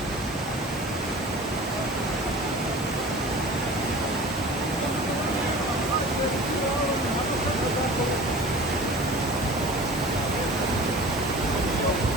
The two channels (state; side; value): normal; both; correlation 0.40